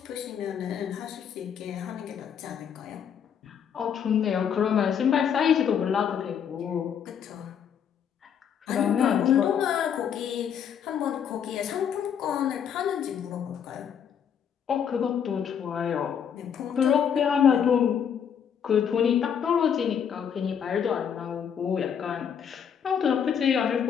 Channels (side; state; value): right; quieter; 8.1 dB